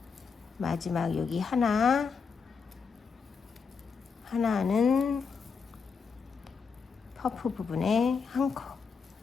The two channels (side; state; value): right; quieter; 5.5 dB